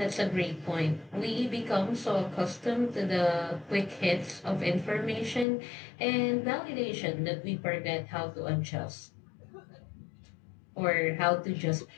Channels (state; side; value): drops out; right; at 5.5 s